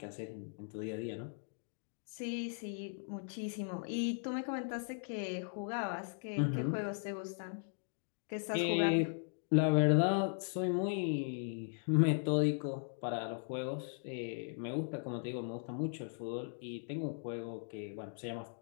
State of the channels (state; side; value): silent; right; digital silence